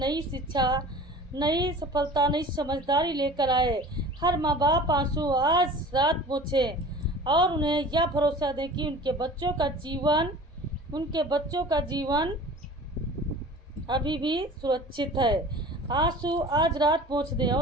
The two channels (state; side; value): normal; both; correlation 0.41